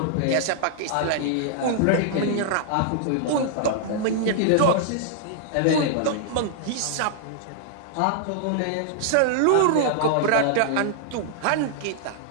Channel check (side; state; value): both; different; correlation -0.01